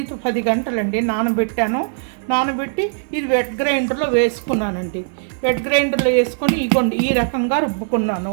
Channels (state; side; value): silent; left; 57 dB below the other